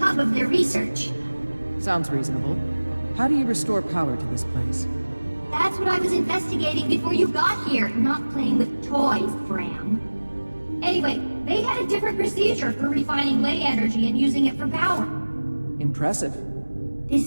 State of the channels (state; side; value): inverted; both; correlation -1.00